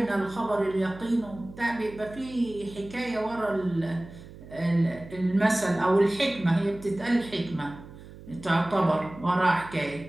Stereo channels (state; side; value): noise; right; hum, 17 dB below the sound